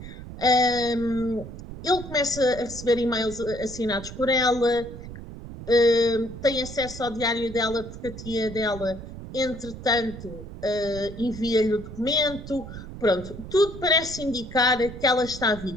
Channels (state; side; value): noise; right; rumble, 12 dB below the sound